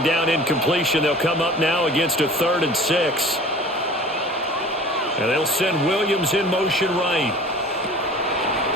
down incompletion, they'll come up now against a 3rd and 6. And they'll send Williams in motion right.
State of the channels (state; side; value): normal; both; correlation 0.43